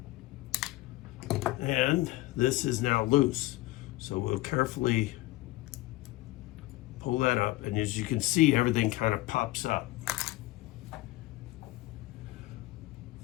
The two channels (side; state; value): right; quieter; 18.6 dB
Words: And this is now loose. So we'll carefully pull that up, and as you can see, everything kind of pops up.